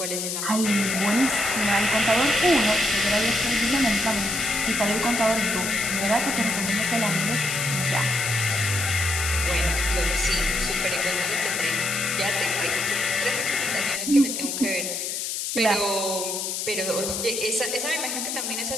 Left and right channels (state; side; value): noise; left; hiss, 3 dB below the sound